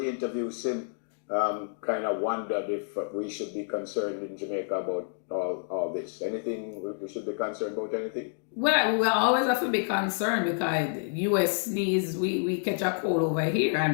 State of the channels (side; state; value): right; silent; 59 dB below the other